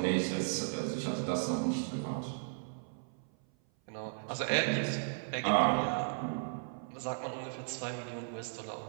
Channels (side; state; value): left; silent; 54 dB below the other